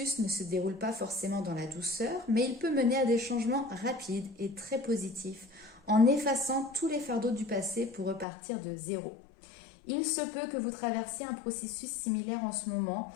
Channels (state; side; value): drops out; right; at 8.2 s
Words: ne se déroule pas forcément dans la douceur, mais il peut mener à des changements rapides et très positifs, en effaçant tous les fardeaux du passé pour repartir de zéro. Il se peut que vous traversiez un processus similaire en ce moment